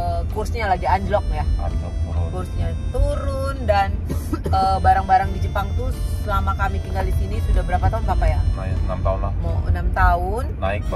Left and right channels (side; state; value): both; identical; correlation 1.00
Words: kursnya lagi anjlok ya, kursnya turun dan barang-barang di Jepang tuh selama kami tinggal di sini sudah berapa tahun Papa ya? 6 tahun lah. Mau 6 tahun. Naik